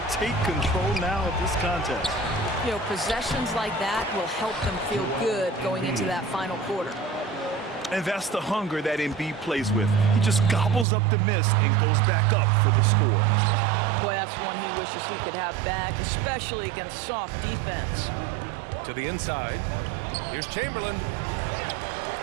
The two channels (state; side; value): drops out; left; at 10.9 s